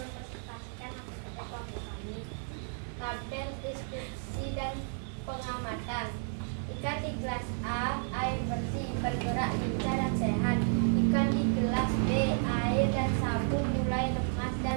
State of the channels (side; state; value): left; silent; 56 dB below the other